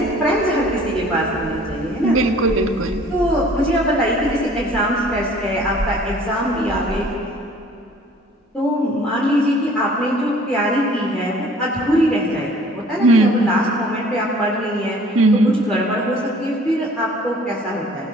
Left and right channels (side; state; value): both; normal; correlation 0.52